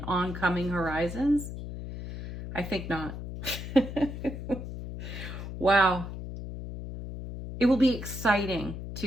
oncoming horizons? I think not. Wow. It will be exciting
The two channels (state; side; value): noise; left; hum, 8 dB below the sound